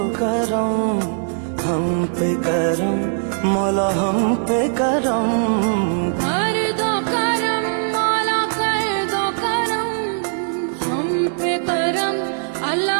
करम हम पे करम मौला हम पे करम कर दो करम मौला कर दो करम हम पे करम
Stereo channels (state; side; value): silent; left; digital silence